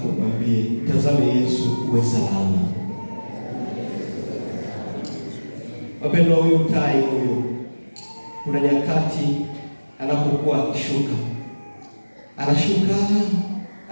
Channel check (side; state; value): both; inverted; correlation -1.00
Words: mwambie, mtazame Yesu uwe salama. Wapendwa, huyu tai huyu, kuna nyakati anapokuwa akishuka, anashuka,